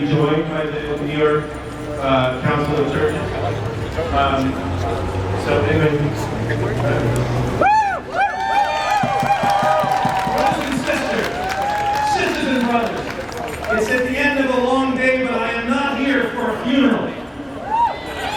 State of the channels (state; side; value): identical; both; correlation 1.00